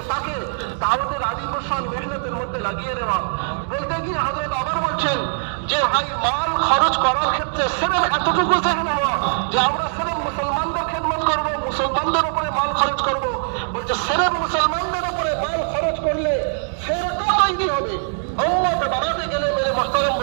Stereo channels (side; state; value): left; silent; digital silence